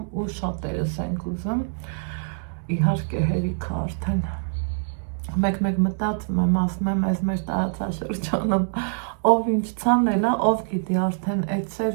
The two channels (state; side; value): silent; left; digital silence